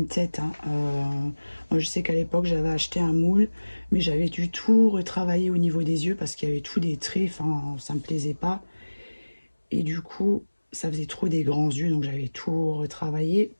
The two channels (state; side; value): inverted; both; correlation -1.00